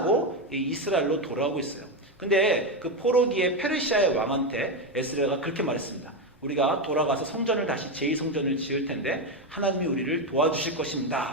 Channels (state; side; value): normal; both; correlation 0.10